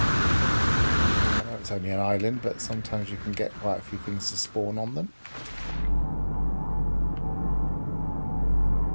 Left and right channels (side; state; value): both; inverted; correlation -1.00